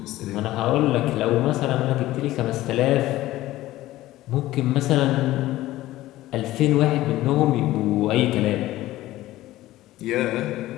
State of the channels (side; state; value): right; quieter; 16.1 dB